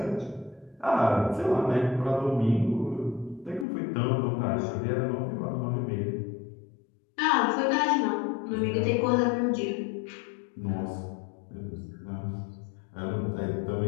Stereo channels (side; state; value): right; drops out; at 3.7 s